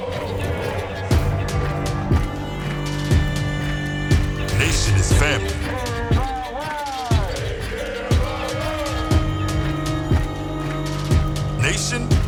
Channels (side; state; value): both; identical; correlation 1.00